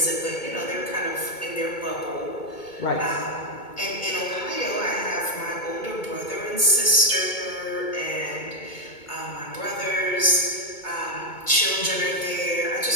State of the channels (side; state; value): right; late; 2.2 ms